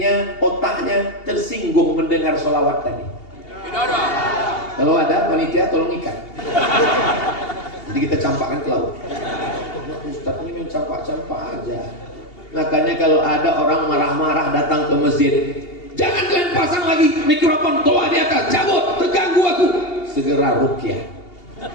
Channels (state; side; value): late; right; 2.8 ms